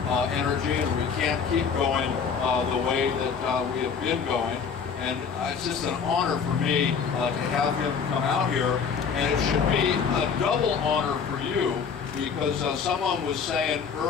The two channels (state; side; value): quieter; right; 6.3 dB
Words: energy, and we can't keep going the way that we have been going. And it's just an honor for me to have him come out here, and it should be a double honor for you, because someone was saying